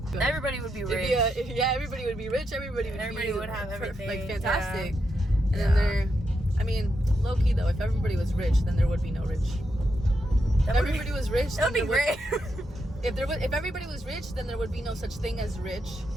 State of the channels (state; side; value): normal; both; correlation 0.83